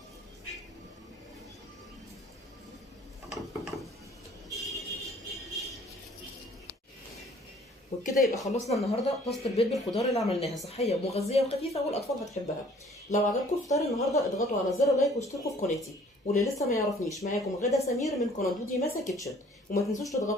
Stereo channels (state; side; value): normal; both; correlation 0.55